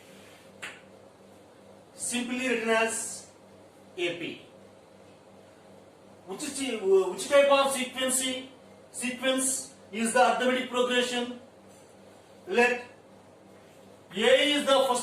simply written as AP. Which type of sequence is the arithmetic progression? Let A is the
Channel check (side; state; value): both; identical; correlation 1.00